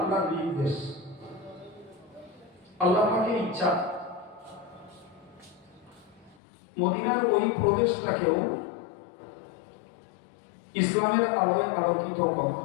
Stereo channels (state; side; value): drops out; right; at 6.4 s